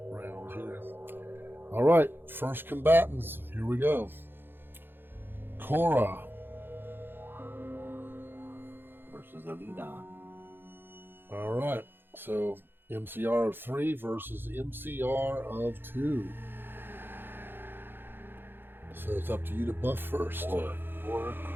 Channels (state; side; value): late; left; 0.10 ms